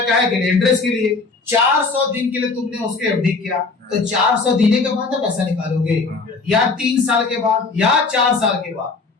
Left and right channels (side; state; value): right; quieter; 4.1 dB